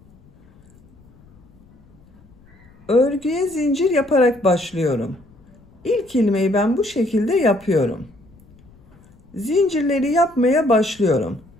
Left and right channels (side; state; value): left; noise; rumble, 28 dB below the sound